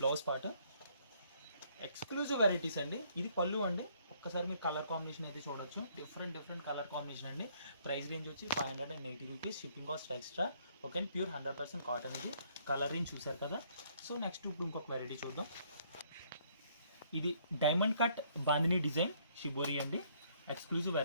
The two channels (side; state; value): both; inverted; correlation -0.66